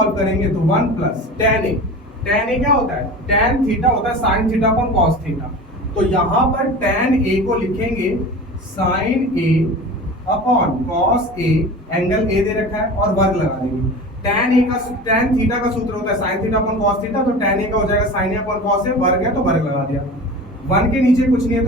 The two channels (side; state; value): both; normal; correlation 0.34